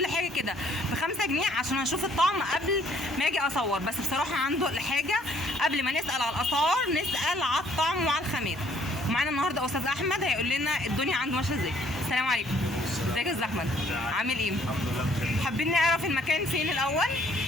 حاجه كده ب5 جنيه عشان اشوف الطعم قبل ما اجي اصور. بس بصراحه عنده الحاجه قبل ما نسال على الاسعار نسال على الطعم وعلى الخامات. ومعانا النهارده استاذ احمد هيقول لنا الدنيا عنده ماشيه ازاي. السلام عليكم. ازيك يا استاذ احمد؟ عامل ايه؟ الحمد لله بخير. حابين نعرف المكان فين الاول؟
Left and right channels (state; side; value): normal; both; correlation 0.62